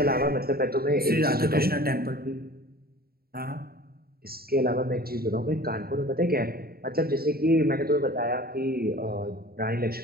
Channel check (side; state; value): left; late; 0.44 ms